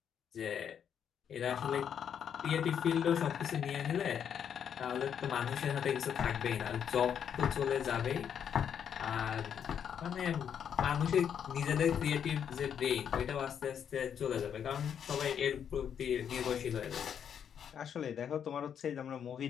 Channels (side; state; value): right; quieter; 8.3 dB